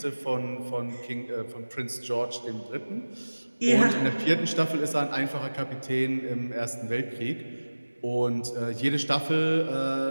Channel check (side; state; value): both; inverted; correlation -1.00